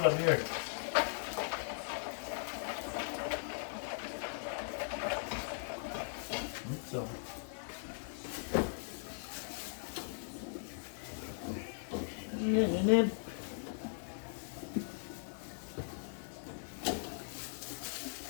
of beer. So.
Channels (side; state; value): right; silent; digital silence